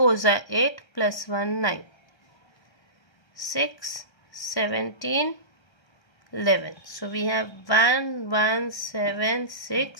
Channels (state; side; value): late; right; 1.3 ms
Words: are 8 plus 1 9. 6 17 11. So we have